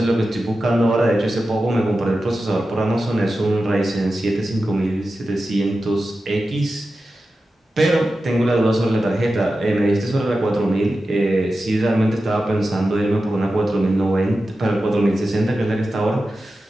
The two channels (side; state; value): both; normal; correlation 0.92